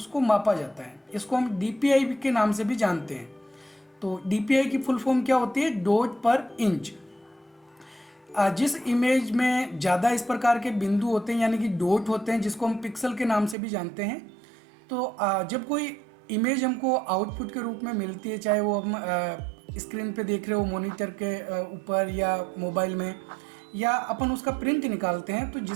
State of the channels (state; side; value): drops out; left; at 13.6 s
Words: मापा जाता है। इसको हम डीपीआई के नाम से भी जानते हैं। तो डीपीआई की फुल फॉर्म क्या होती है? डॉट पर इंच। जिस इमेज में ज़्यादा इस प्रकार के बिंदु होते हैं यानी कि डॉट होते हैं, जिसको हम पिक्सल के नाम से भी जानते हैं, तो जब कोई इमेज हमको आउटपुट के रूप में मिलती है, चाहे वो हम स्क्रीन पे देख रहे हो मॉनिटर के ऊपर या मोबाइल में, या अपन उसका प्रिंट निकालते हैं, तो